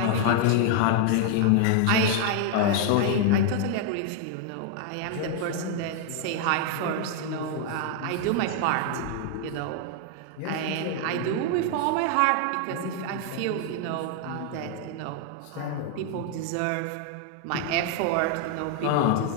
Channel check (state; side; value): different; both; correlation 0.00